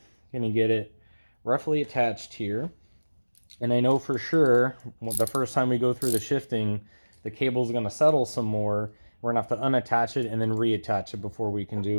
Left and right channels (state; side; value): inverted; both; correlation -1.00